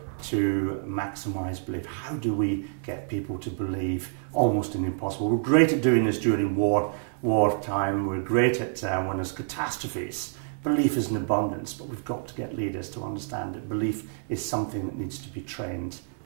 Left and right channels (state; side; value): silent; left; digital silence